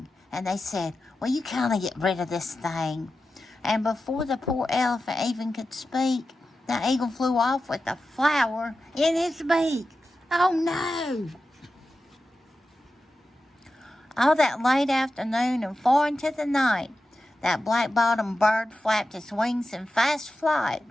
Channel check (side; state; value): both; normal; correlation 0.92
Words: And they said, well, you kind of get rid of this thing. And before the poor elephant even could speak, the eagle flew off with a flower in his beak. Oh, no! All that late afternoon and far into the night, that black-bottomed bird flapped his wings in fast flight,